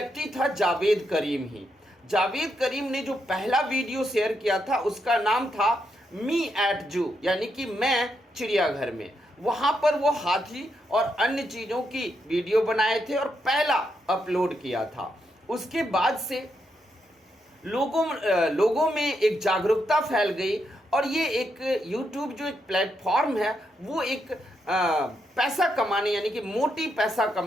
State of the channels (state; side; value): normal; both; correlation 0.81